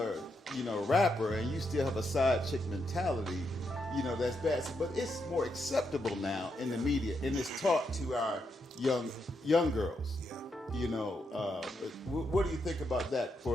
you know, rapper and you still have a side chick mentality, you know, that's bad. But it's more acceptable now in the media, and it's taught to our young girls. Yeah. You know, what do you think about that for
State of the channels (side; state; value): both; normal; correlation 0.81